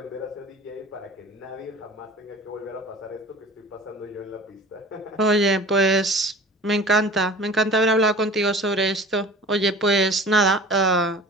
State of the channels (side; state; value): both; normal; correlation 0.41